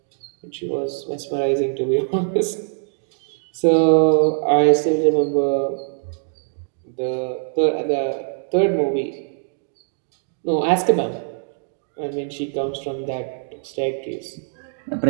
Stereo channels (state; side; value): silent; left; digital silence